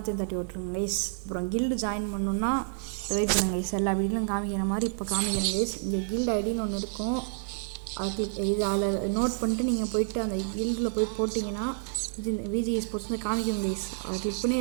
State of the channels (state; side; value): silent; left; digital silence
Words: தட்டி விட்டுருங்க கைஸ். அப்புறம் கில்டு ஜாயின் பண்ணணுன்னா வெயிட் பண்ணுங்க கைஸ். எல்லா வீடியோலும் காமிக்கிற மாதிரி இப்போ காமிக்கிறேன் கைஸ். இங்கே கில்டு ஐடின்னு ஒன்று இருக்கும், அது இது அதில் நோட் பண்ணிட்டு நீங்கள் போயிட்டு அந்த கில்டில் போய் போட்டிங்கன்னா இது விஜி ஸ்போர்ட்ஸ் வந்து காமிக்கும் கைஸ். அதை கிளிக் பண்ணி